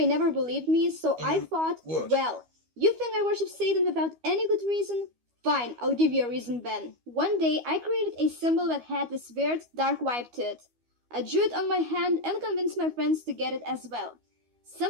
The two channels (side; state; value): left; late; 12 ms